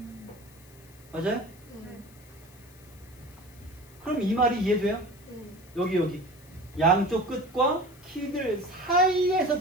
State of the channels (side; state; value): left; noise; hiss, 25 dB below the sound